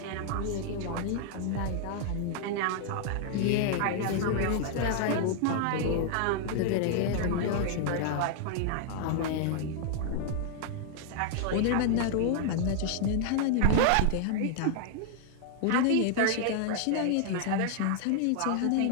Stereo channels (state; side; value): different; both; correlation 0.00